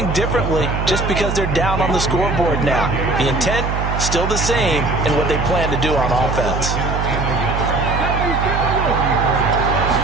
differently just because they're down on the scoreboard now. The intent, still the same in what they plan to do on offense.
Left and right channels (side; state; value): right; noise; hum, 2 dB below the sound